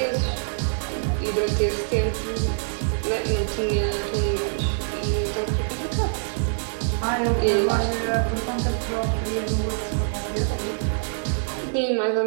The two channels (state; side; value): silent; left; digital silence